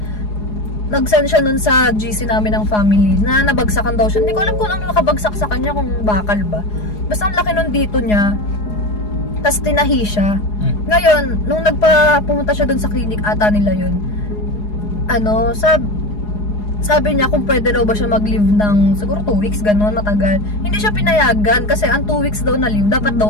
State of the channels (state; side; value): late; right; 4.8 ms